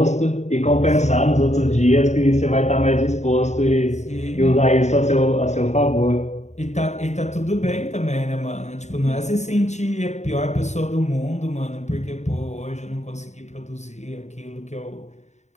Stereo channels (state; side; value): late; right; 0.33 ms